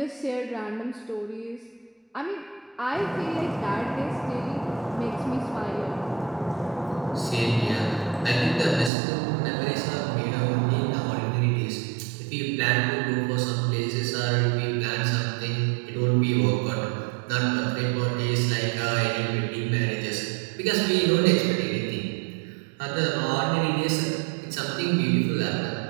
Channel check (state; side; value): drops out; left; at 8.9 s